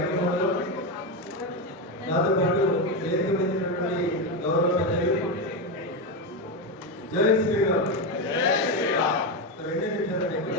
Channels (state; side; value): normal; both; correlation 0.11